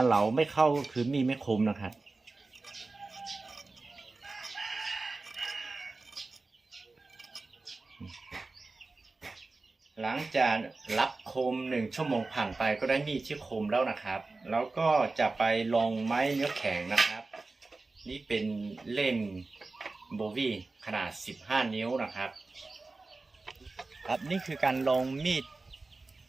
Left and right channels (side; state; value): left; quieter; 3.5 dB